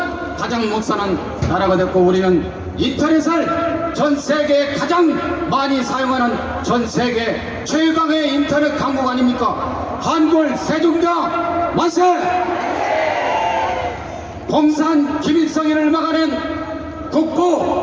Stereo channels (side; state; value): both; identical; correlation 1.00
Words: 가장 못 사는 나라가 됐고 우리는 인터넷을 전 세계에 가장 많이 사용하는 전 세계 최강의 인터넷 강국 아닙니까? 한글 세종대왕 만세! 공산 김일성이를 막아낸